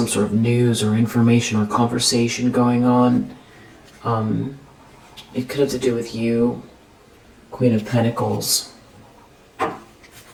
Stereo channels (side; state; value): both; identical; correlation 1.00